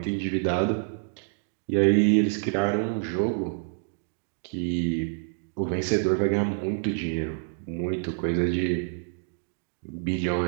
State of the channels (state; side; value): silent; left; 60 dB below the other